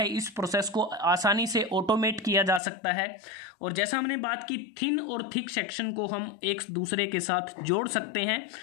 इस प्रोसेस को आसानी से ऑटोमेट किया जा सकता है, और जैसा हमने बात की थिन और थिक सेक्शन को हम एक दूसरे के साथ जोड़ सकते हैं।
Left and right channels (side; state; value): right; drops out; at 2.6 s